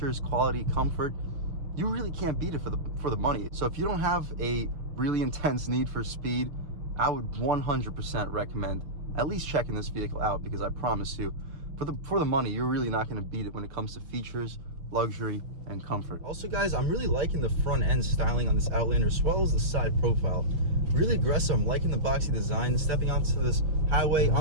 quality, comfort, you really can't beat it for the money. So if you don't have a really intense need for speed, I would 100% recommend at least checking this vehicle out, because I promise you, for the money, you're really not going to beat it when it comes to features, luxury, and comfort. Also, guys, I'm really liking the front end styling on this Outlander, as well as the side profile. Really aggressive. I'm liking the boxy design. Stepping onto this highway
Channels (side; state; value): left; late; 6.1 ms